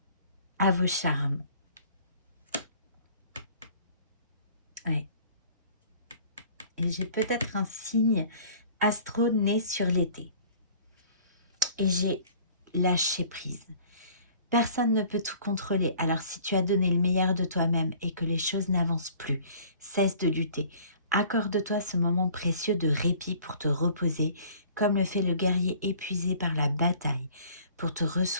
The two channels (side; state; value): both; inverted; correlation -0.51